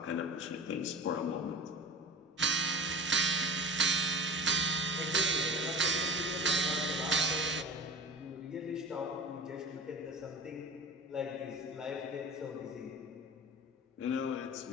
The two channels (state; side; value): normal; both; correlation 0.35